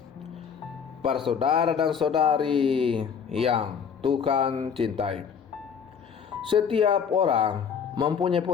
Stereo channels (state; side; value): quieter; right; 6.9 dB